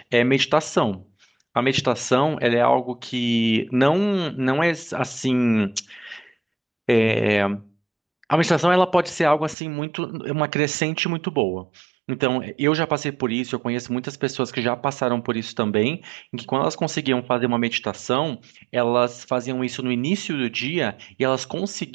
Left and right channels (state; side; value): drops out; left; at 9.6 s